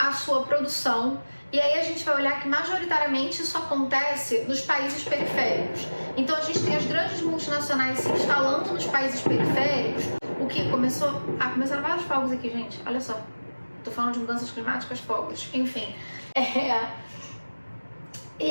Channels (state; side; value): inverted; both; correlation -1.00